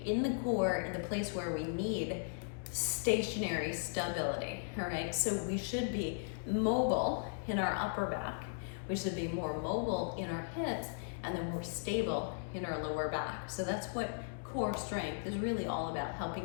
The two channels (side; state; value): right; silent; digital silence